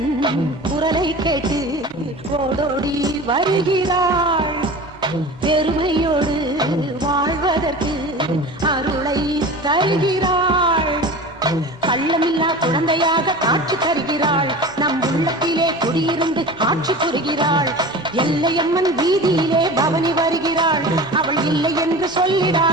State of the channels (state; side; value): normal; both; correlation 0.35